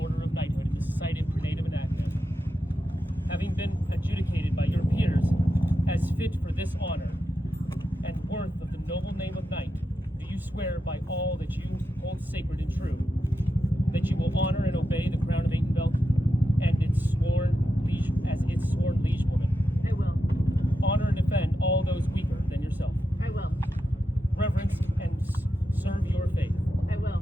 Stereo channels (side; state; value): both; normal; correlation 0.88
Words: of knighthood in the Society of Prenatum and Active. Having been adjudicated by your peers as fit for this honor and worth of the noble name of knight, do you swear by all that you hold sacred and true that you will honor and obey the crown of Atenvelt and its sworn liege as its sworn liegewoman? I will. Honor and defend all those weaker than yourself. I will. Reverence and serve your faith. I will.